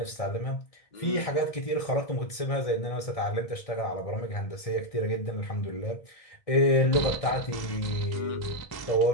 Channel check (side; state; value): right; late; 1.6 ms